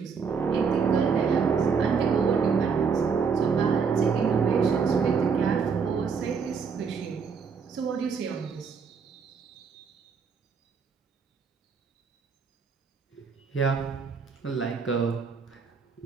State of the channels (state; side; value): quieter; left; 5.8 dB